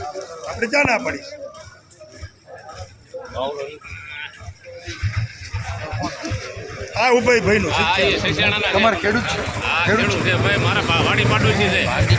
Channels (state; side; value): identical; both; correlation 1.00